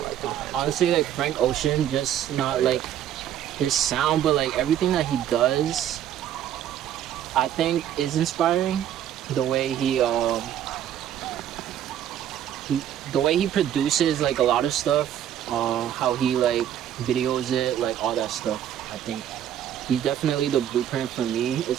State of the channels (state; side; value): quieter; left; 10.6 dB